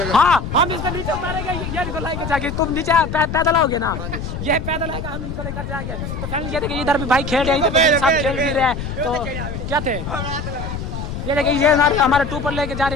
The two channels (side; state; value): left; noise; rumble, 6 dB below the sound